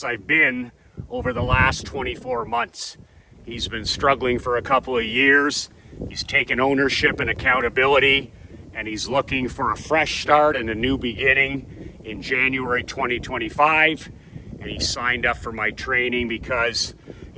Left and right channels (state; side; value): identical; both; correlation 1.00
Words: I've been over the last 24 months. He's been struggling for a couple of years. He's taken ownership and accountability, and he's looking for a fresh start and a new beginning in January 2025. And he signed up for my training because